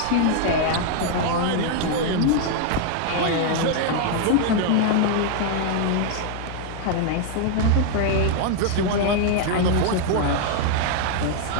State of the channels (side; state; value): both; different; correlation 0.00